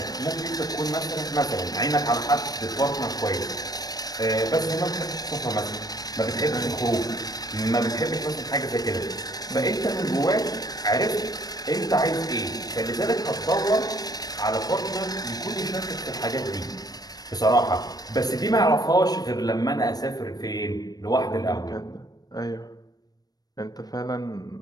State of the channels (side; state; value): right; late; 0.19 ms